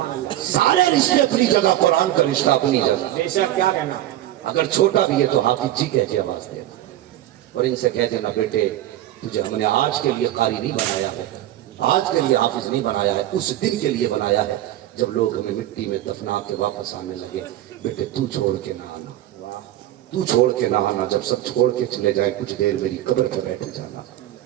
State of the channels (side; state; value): left; quieter; 13.7 dB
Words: اللہ. سارے رشتے اپنی جگہ, قرآن کا رشتہ اپنی جگہ. بے شک کیا کہنا. اگر چھوٹا بھی ہے تو حافظ جی کہہ کے آواز دے, اور ان سے کہہ دینا بیٹے تجھے ہم نے آج کے لیے قاری نہیں بنایا ہے, آج کے لیے حافظ نہیں بنایا ہے, اس دن کے لیے بنایا ہے جب لوگ ہمیں مٹی میں دفنا کے واپس آنے لگے. بیٹے تو چھوڑ کے نہ آنا, تو چھوڑ کے نہ آنا. جب سب چھوڑ کے چلے جائے کچھ دیر میری قبر پہ بیٹھ جانا.